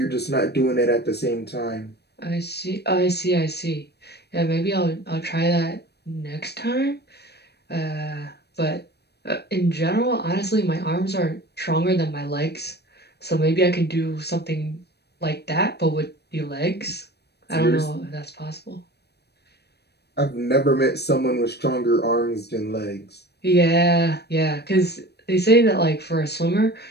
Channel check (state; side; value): late; right; 0.48 ms